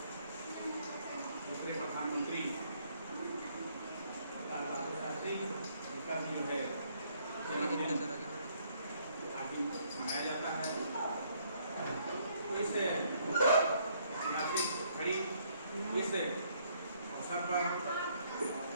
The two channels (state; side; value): inverted; both; correlation -0.67